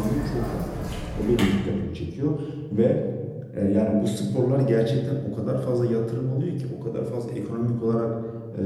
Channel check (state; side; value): identical; both; correlation 1.00